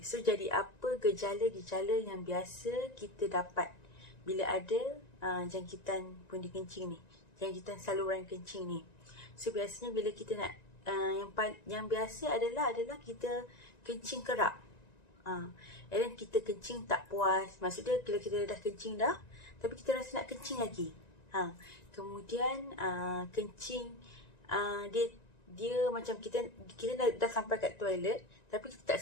so jadi apa gejala-gejala yang biasa kita dapat bila ada jangkitan pundi kencing ni, jangkitan saluran kencing ni. So biasanya bila kita nak yang biasa adalah kita kencing kerap. And then kita kencing tak puas. Maksudnya bila kita dah kencing dah, tapi kita rasa nak kencing lagi. Kemudian kencing dia macam kita dah sampai kat toilet tapi kita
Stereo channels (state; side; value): late; right; 1.9 ms